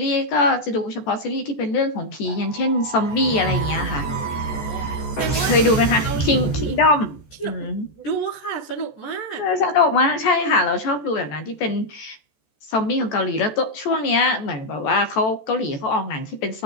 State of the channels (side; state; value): right; late; 14 ms